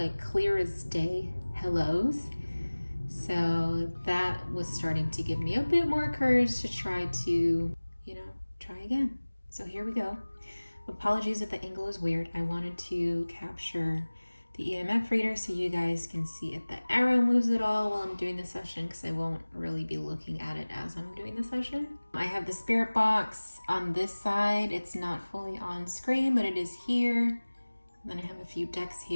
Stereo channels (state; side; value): inverted; both; correlation -1.00